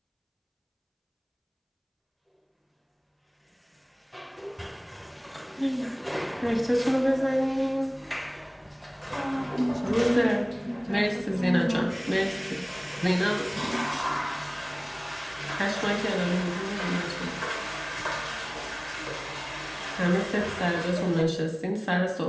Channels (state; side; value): identical; both; correlation 1.00